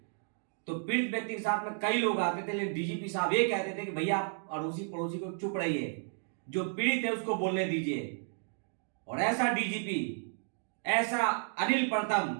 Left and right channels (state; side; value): silent; left; 56 dB below the other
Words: तो पीड़ित व्यक्ति के साथ में कई लोग आते थे, लेकिन डीजीपी साहब ये कहते थे कि भैया आप अड़ोसी पड़ोसी को चुप रहिए, जो पीड़ित है उसको बोलने दीजिए। और ऐसा डीजीपी, ऐसा अनिल प्रथम